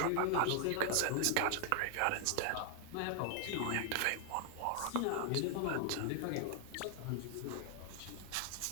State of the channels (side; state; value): both; different; correlation 0.00